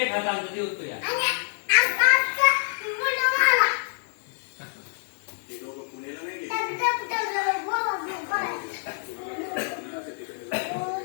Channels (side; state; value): right; silent; digital silence